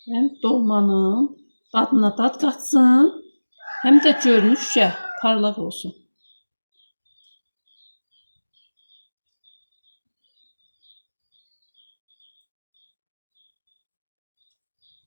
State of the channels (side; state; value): both; inverted; correlation -1.00